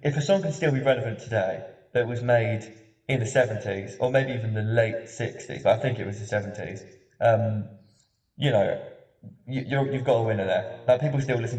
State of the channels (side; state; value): both; identical; correlation 1.00